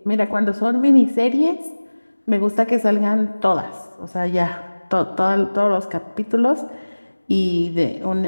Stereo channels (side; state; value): both; inverted; correlation -1.00